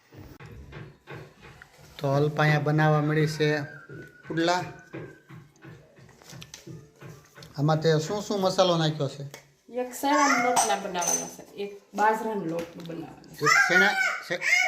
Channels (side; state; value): both; identical; correlation 1.00